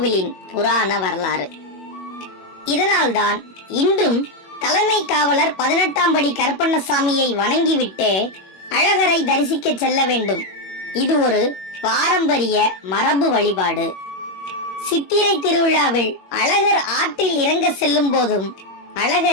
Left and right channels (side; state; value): right; late; 21 ms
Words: புராண வரலாறு. இதனால்தான் இன்றும் தலைமை காவலர் 18ஆம் படி கருப்பண்ணசாமியை வணங்கிவிட்டு அழகரை தரிசிக்க செல்ல வேண்டும். இது ஒரு பாரம்பரிய மரபு வழிபாடு. சித்திரை திருவிழாவில் அழகர் ஆற்றில் இறங்க செல்லும் போதும்